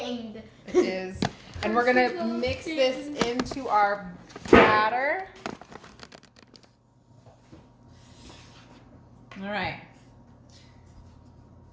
It is. And we're gonna mix this into our batter. All right.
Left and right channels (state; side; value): identical; both; correlation 1.00